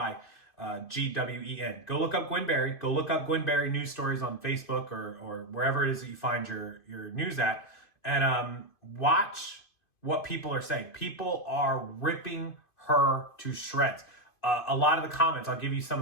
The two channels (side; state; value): right; late; 2.5 ms